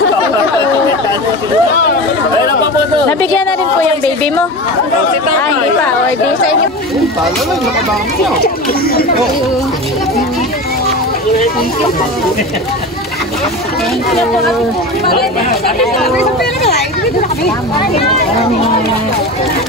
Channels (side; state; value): both; normal; correlation 0.28